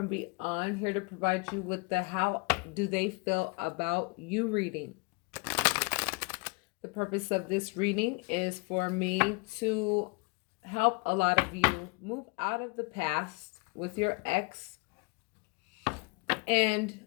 Beyond, here to provide you with the How Do They Feel About You reading. The purpose of this reading is for me to help a lot of you move out of the past with your ex and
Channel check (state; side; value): quieter; right; 29.7 dB